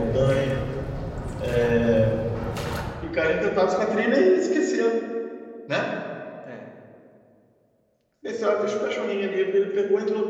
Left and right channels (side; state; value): both; identical; correlation 1.00